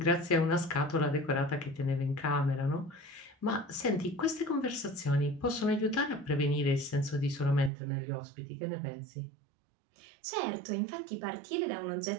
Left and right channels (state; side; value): drops out; left; at 7.7 s